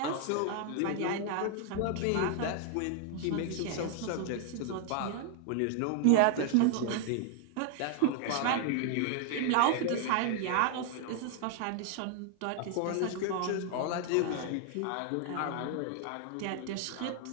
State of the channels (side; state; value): both; different; correlation 0.00